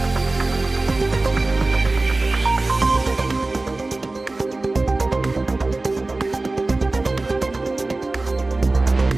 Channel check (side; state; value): left; quieter; 3.1 dB